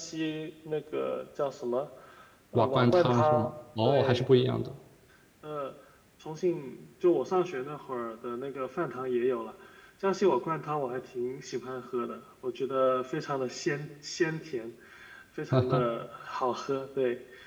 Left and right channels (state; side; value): identical; both; correlation 1.00